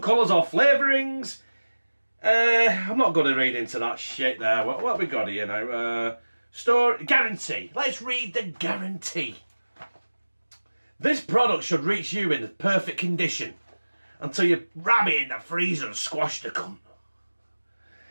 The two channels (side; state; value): both; inverted; correlation -1.00